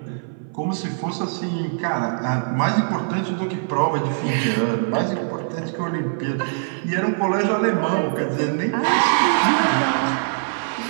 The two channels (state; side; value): silent; left; 59 dB below the other